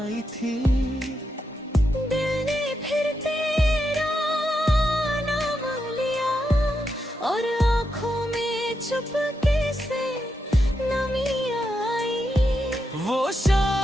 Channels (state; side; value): normal; both; correlation 0.84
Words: थी। दिल ने फिर तेरा नाम लिया, और आँखों में चुपके से नमी आई। वो